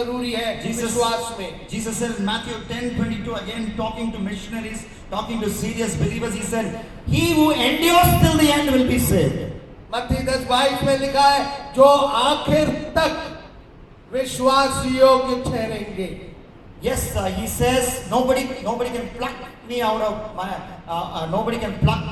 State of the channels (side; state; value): both; identical; correlation 1.00